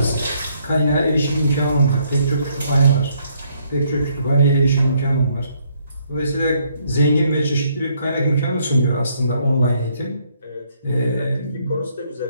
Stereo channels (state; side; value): inverted; both; correlation -0.70